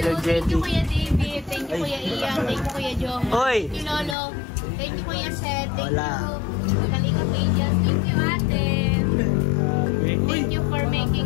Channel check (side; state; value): right; drops out; at 4.2 s